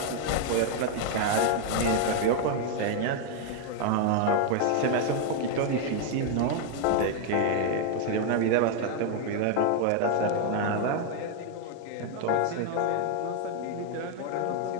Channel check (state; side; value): different; both; correlation 0.00